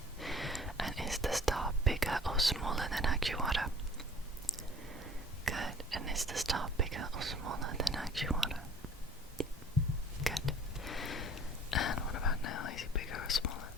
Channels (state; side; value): normal; both; correlation 0.49